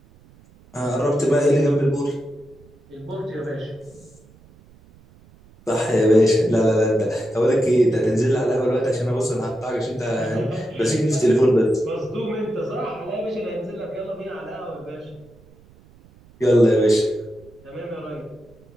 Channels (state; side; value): noise; right; rumble, 27 dB below the sound